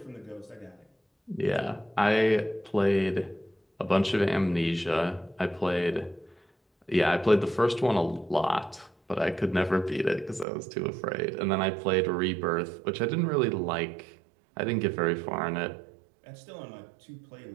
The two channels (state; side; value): drops out; left; at 10.5 s